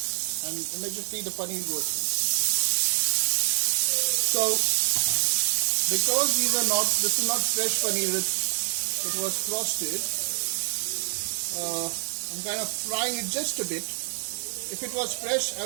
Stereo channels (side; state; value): left; silent; digital silence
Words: And immediately the paneer goes in. So, because this is not fresh paneer, it was frosted, I'm kind of frying it just a bit. If it was fresh, I